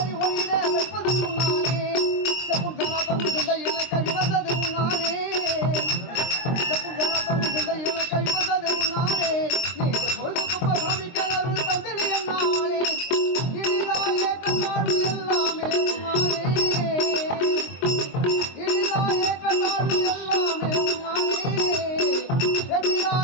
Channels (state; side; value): late; right; 23 ms